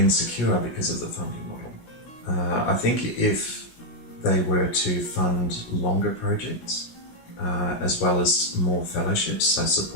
because of the funding model. I think if they were to fund longer projects, as well as more fellowships, so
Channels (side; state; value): right; late; 17 ms